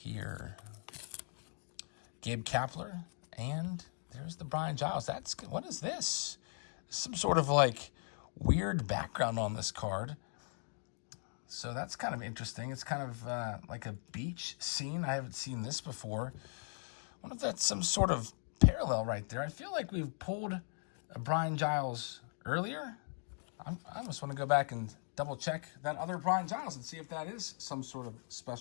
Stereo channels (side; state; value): right; silent; 52 dB below the other